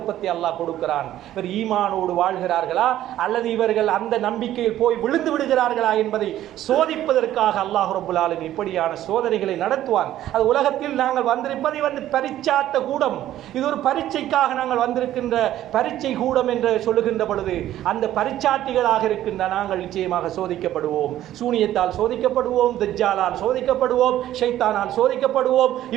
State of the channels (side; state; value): left; quieter; 12.9 dB